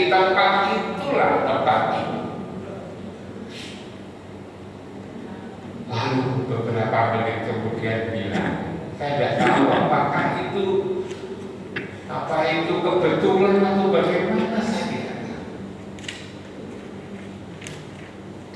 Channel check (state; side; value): identical; both; correlation 1.00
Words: tempat itulah tempat itu. Lalu beberapa menit kemudian bilang, saya tidak tahu apakah itu kebetulan atau bagaimana, saya tidak tahu.